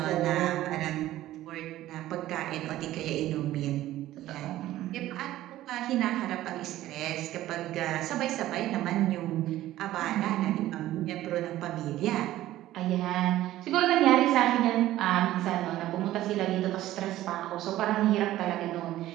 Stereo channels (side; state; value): left; quieter; 14.7 dB